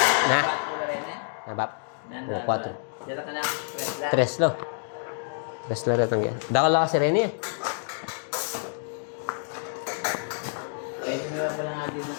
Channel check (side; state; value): right; silent; digital silence